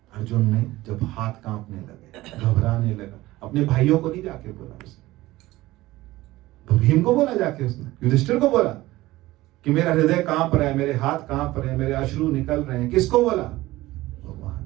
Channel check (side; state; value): left; quieter; 17.8 dB